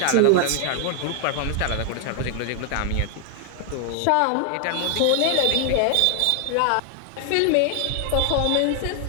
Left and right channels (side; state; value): both; different; correlation 0.00